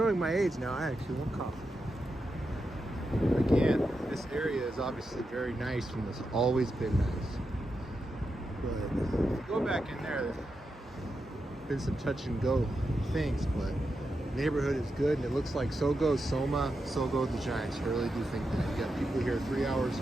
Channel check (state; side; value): normal; both; correlation 0.87